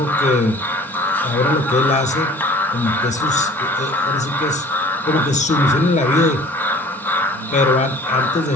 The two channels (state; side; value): normal; both; correlation 0.49